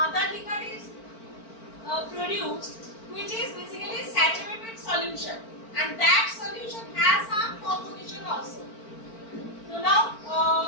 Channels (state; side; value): late; right; 4.4 ms